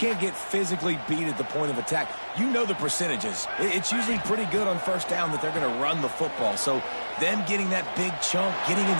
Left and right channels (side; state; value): both; inverted; correlation -1.00